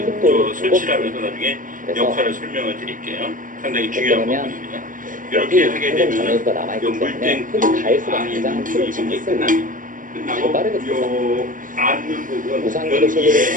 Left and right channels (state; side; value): late; left; 0.39 ms